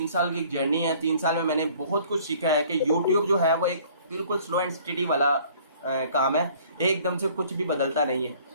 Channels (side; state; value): both; inverted; correlation -0.54